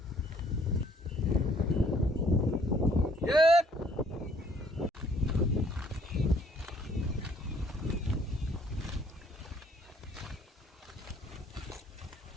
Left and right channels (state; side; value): normal; both; correlation 0.62